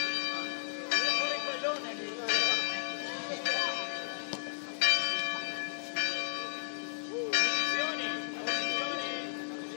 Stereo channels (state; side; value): silent; right; digital silence